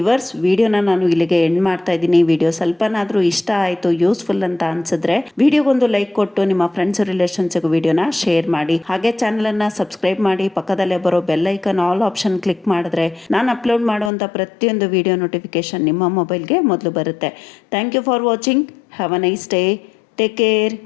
ವಿಡಿಯೋನ ನಾನು ಇಲ್ಲಿಗೆ ಎಂಡ್ ಮಾಡ್ತಾ ಇದ್ದೀನಿ. ವಿಡಿಯೋ ಸ್ವಲ್ಪನಾದರೂ ಇಷ್ಟ ಆಯಿತು, ಯೂಸ್ಫುಲ್ ಅಂತ ಅನಿಸಿದ್ರೆ ವಿಡಿಯೋಗೊಂದು ಲೈಕ್ ಕೊಟ್ಟು ನಿಮ್ಮ ಫ್ರೆಂಡ್ಸ್ ರಿಲೇಷನ್ಸ್ಗೂ ವಿಡಿಯೋನ ಶೇರ್ ಮಾಡಿ. ಹಾಗೆ ಚಾನಲನ್ನು ಸಬ್ಸ್ಕ್ರೈಬ್ ಮಾಡಿ ಪಕ್ಕದಲ್ಲೇ ಬರೋ bell icon all option click ಮಾಡಿದ್ರೆ ನಾನು ಅಪ್ಲೋಡ್ ಮಾಡುವಂಥ ಪ್ರತಿಯೊಂದು ವಿಡಿಯೋ ನೋಟಿಫಿಕೇಶನ್ ನಿಮ್ಮ ಮೊಬೈಲ್ಗೆ ಮೊದಲು ಬರುತ್ತೆ. Thank you for watching. Have a nice day. Take care.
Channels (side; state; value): right; drops out; at 14.1 s